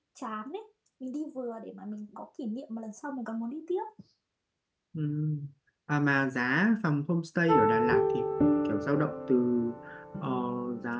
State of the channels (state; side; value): identical; both; correlation 1.00